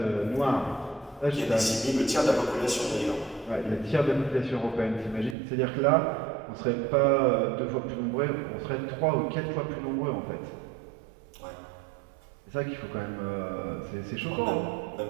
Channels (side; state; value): left; drops out; at 5.4 s